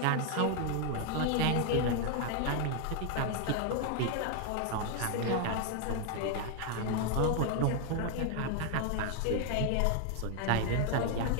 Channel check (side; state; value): both; different; correlation 0.01